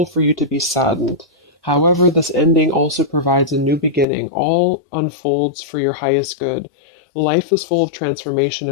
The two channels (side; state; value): right; drops out; at 4.0 s